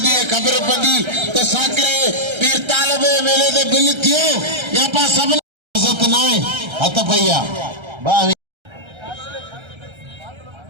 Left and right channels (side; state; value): left; late; 1.3 ms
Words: दिए खबर पड़ी तो साकरे पीर तालब मेले दे बिल थियो या पा सब इज्जत ना हथ भैया